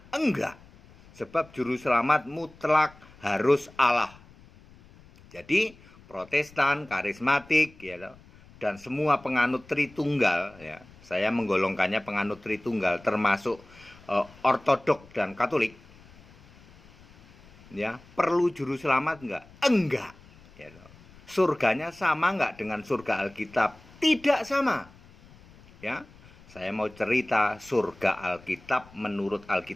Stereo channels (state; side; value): noise; left; rumble, 24 dB below the sound